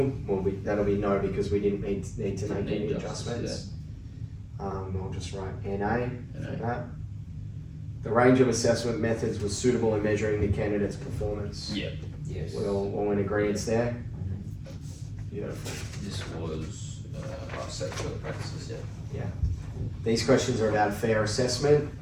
Well, that'll be no because we didn't need to make any adjustments. I'll just write NA for that. The range of assessment methods was suitable in measuring the candidate's performance. Yeah. Yes. We're all in agreement there. Beautiful. This was our set for the practices, yeah. These questions are about fair assessment.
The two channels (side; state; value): both; identical; correlation 1.00